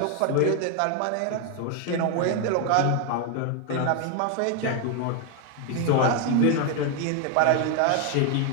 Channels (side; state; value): both; different; correlation 0.01